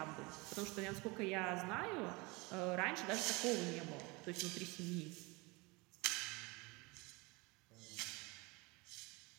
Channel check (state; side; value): quieter; left; 25.8 dB